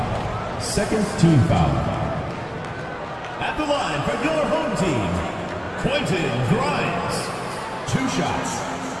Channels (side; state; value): both; identical; correlation 1.00